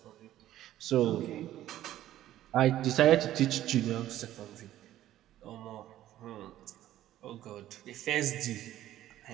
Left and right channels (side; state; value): left; quieter; 13.3 dB